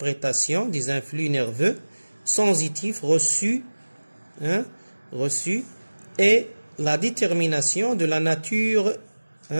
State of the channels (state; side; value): inverted; both; correlation -1.00